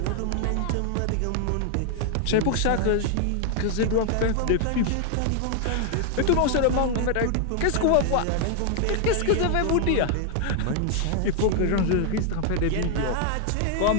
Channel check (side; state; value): both; different; correlation 0.00